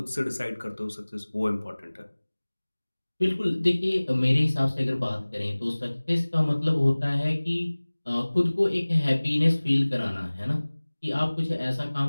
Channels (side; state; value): both; inverted; correlation -1.00